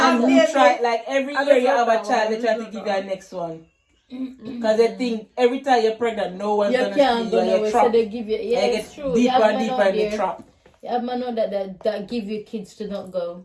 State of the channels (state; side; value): identical; both; correlation 1.00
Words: who baby. try, like every I year you just have love a that child, one. they try I to just give love you a next one? Because they think every time you're pregnant, no one's You gonna can't see go you and nowhere, you're so trapped. they give you. Yeah, And you it's get true. You deeper have and man deeper out in the there. trap. You have man out that give you kids to not go.